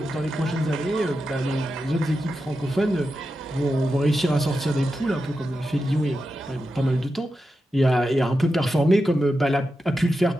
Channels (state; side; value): normal; both; correlation 0.89